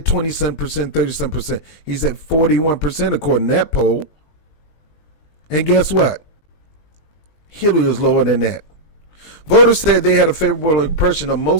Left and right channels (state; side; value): late; right; 20 ms